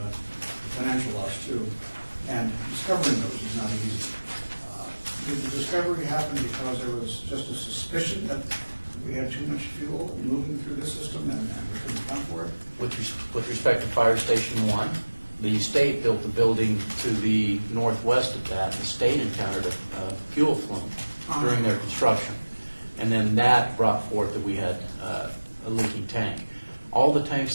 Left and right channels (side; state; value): both; inverted; correlation -1.00